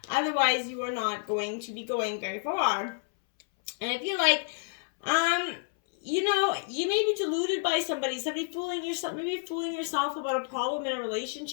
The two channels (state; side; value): silent; right; 58 dB below the other